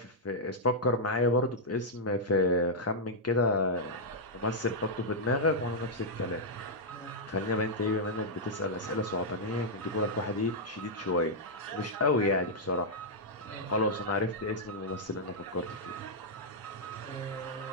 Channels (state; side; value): normal; both; correlation -0.06